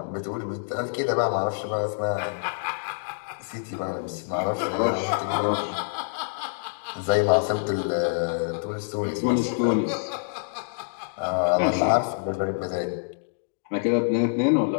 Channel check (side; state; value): right; silent; digital silence